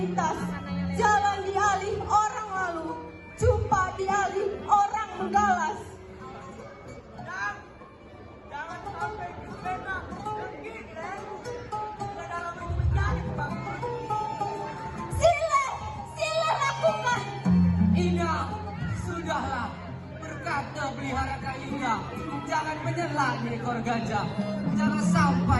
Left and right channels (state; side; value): identical; both; correlation 1.00